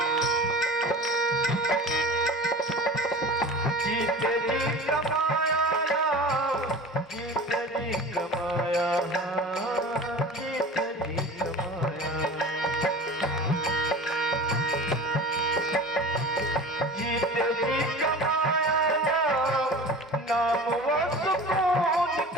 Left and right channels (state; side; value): normal; both; correlation 0.37